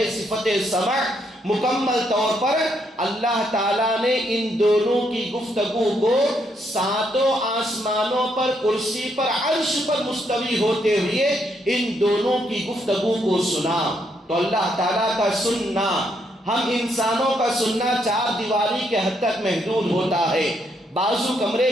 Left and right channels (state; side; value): normal; both; correlation 0.75